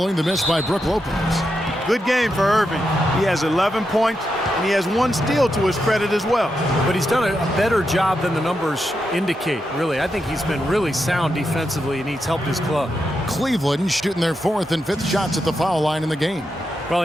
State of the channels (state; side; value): normal; both; correlation 0.86